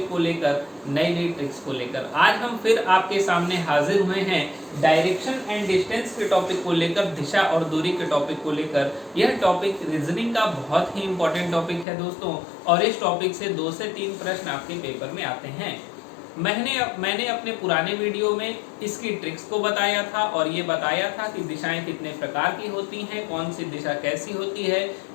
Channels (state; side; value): drops out; right; at 11.9 s